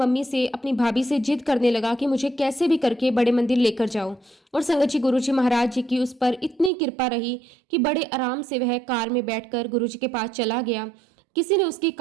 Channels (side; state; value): left; drops out; at 6.7 s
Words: से, अपनी भाभी से जिद करने लगा कि मुझे कैसे भी करके बड़े मंदिर लेकर जाओ। और संगत जी गुरुजी महाराज जी की उस पर इतनी कृपा रही कि बड़े आराम से वह कार में बैठकर गुरुजी के पास चला गया। किसी ने उसकी